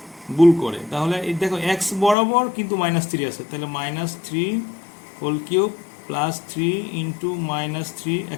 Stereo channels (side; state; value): right; drops out; at 2.1 s